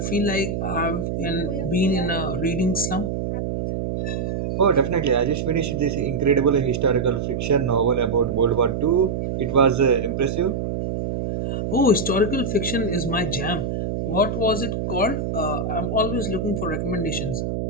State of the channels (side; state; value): right; noise; hum, 2 dB below the sound